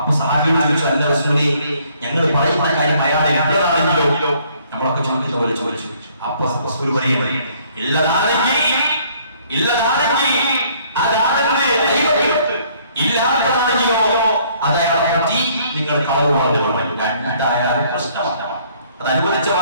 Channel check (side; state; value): both; inverted; correlation -0.62